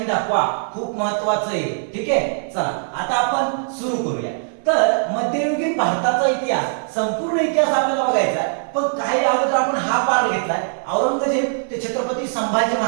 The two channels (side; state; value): left; silent; digital silence